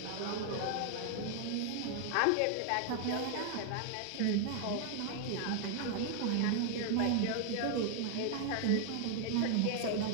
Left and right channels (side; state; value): both; different; correlation 0.00